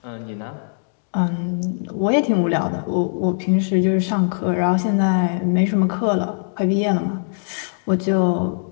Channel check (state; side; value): silent; right; digital silence